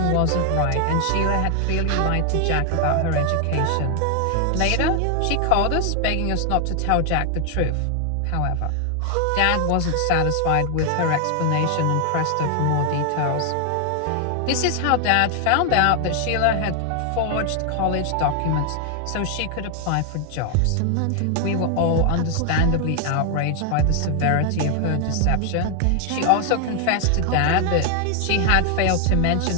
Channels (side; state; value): both; different; correlation 0.00